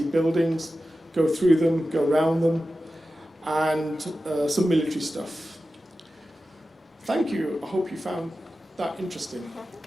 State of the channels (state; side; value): normal; both; correlation 0.93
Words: buildings, go through them, go around them, and some military stuff. Thank you. I hope you found that interesting.